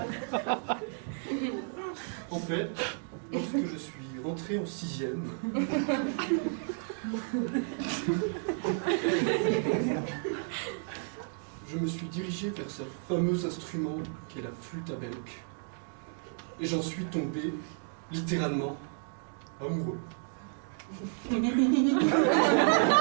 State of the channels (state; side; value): silent; left; 56 dB below the other